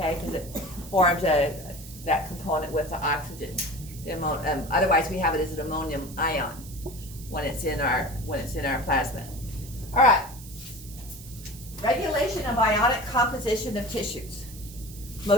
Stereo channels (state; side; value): noise; right; hiss, 17 dB below the sound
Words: Because it forms that component with the oxygen. Otherwise, we have it as an ammonium ion when it's in our plasma. All right. Regulation of ionic composition of tissues.